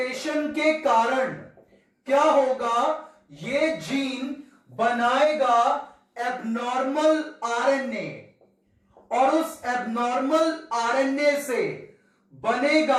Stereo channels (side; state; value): both; identical; correlation 1.00